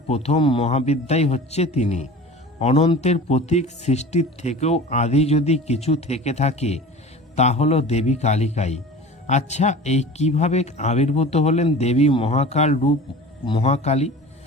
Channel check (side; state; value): both; normal; correlation 0.38